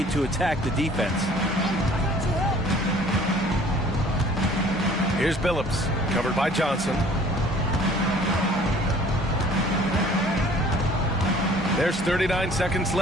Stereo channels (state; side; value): normal; both; correlation 0.52